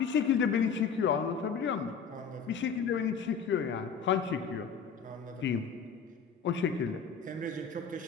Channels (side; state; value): right; quieter; 6.3 dB